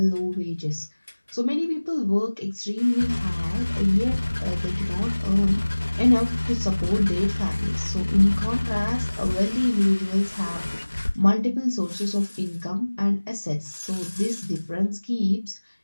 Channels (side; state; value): both; inverted; correlation -1.00